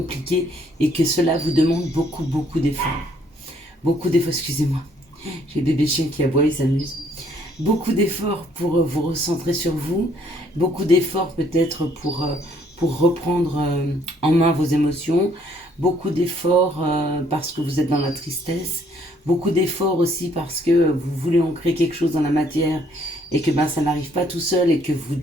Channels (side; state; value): both; normal; correlation 0.65